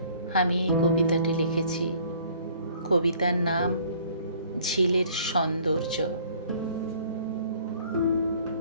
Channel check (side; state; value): both; inverted; correlation -0.56